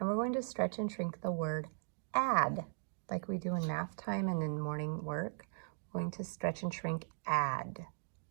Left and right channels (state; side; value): silent; left; digital silence